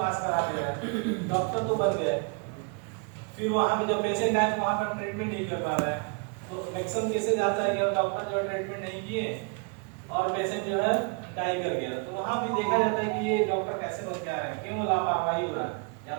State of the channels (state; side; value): quieter; left; 35.3 dB